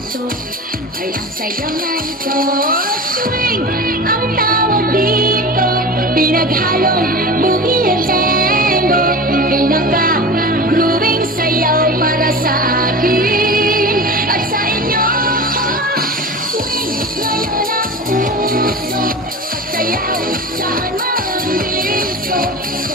ay ang sayaw na ito. Swing ang tawag dito, pinaghalong boogie at tango, pinaka-grooving sayaw para sa akin at sa inyo. Swing ngayon ang uso at sayaw saan man disco. So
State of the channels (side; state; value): both; normal; correlation 0.31